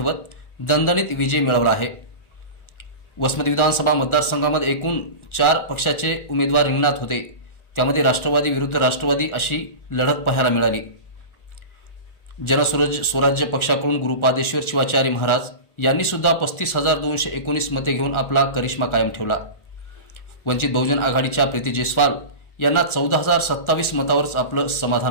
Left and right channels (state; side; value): late; right; 1.4 ms